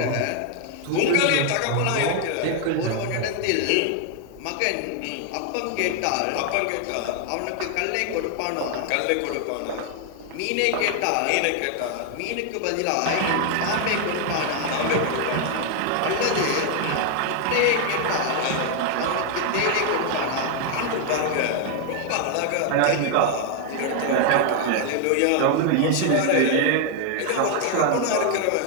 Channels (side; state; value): both; different; correlation 0.00